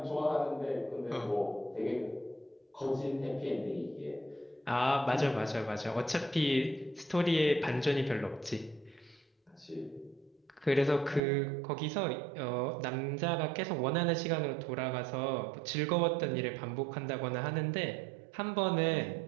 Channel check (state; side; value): drops out; left; at 11.2 s